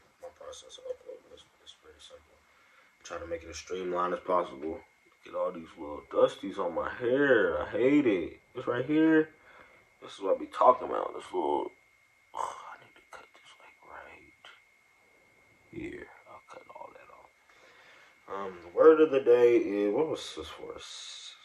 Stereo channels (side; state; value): both; identical; correlation 1.00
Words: my process of uploading. It's pretty simple. I try to make it as streamlined as possible. Get all these little dusties on my hair. I hate it. This right here. This is what I be talking about. This little. Oh, I need to cut this like right here. I'll cut all that off. The word of the day is, what was this for?